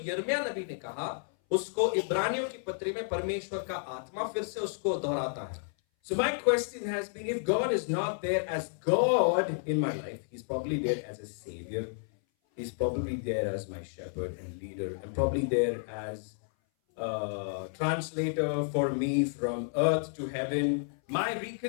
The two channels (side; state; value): right; silent; 57 dB below the other